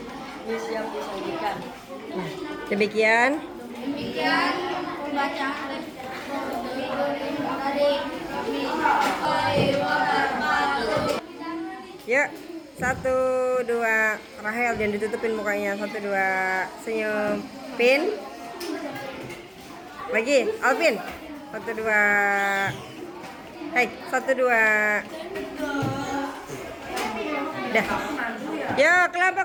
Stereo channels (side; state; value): both; identical; correlation 1.00